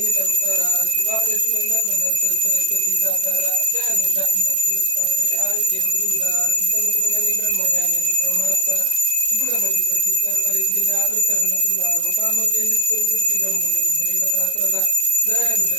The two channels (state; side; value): late; left; 32 ms